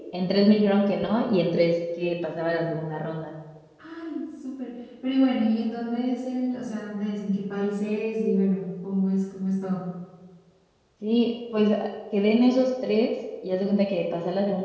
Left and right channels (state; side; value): identical; both; correlation 1.00